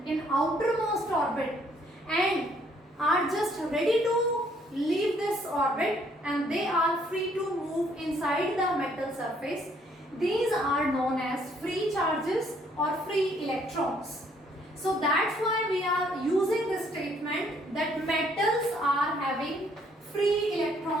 in outermost orbit and are just ready to leave this orbit and they are free to move inside the metal surface, these are known as free charges or free electrons. So that's why we are using this statement that metals are having free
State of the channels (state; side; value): normal; both; correlation 0.66